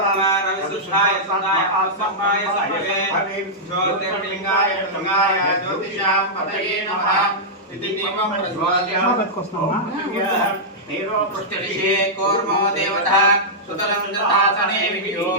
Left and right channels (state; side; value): normal; both; correlation -0.10